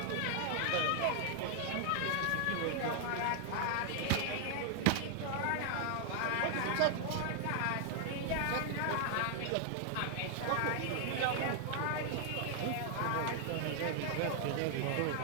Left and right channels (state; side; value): different; both; correlation 0.00